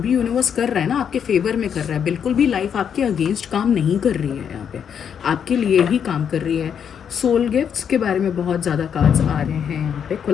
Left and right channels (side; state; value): right; quieter; 7.9 dB